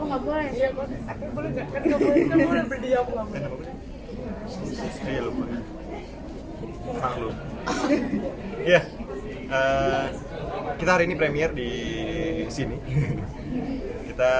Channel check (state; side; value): identical; both; correlation 1.00